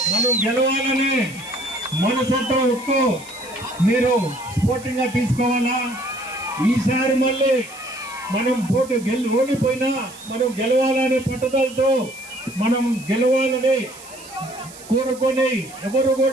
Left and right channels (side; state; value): right; noise; hiss, 18 dB below the sound